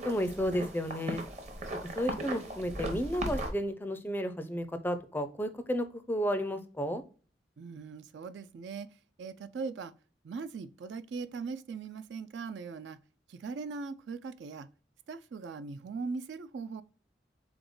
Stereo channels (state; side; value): normal; both; correlation 0.71